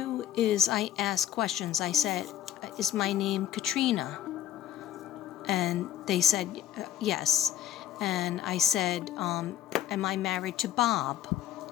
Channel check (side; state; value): right; quieter; 11.3 dB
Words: is I ask questions. I said, is my name Katrina? And they said yes. And I said, am I married to Bob?